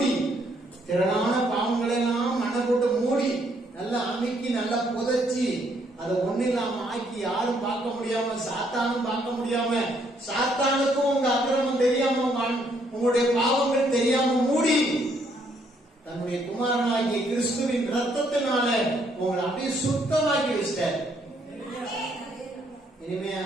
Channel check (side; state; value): both; normal; correlation 0.70